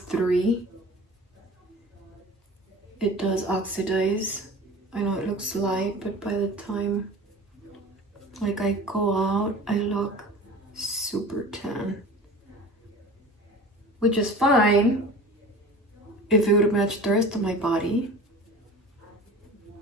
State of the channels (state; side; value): normal; both; correlation 0.39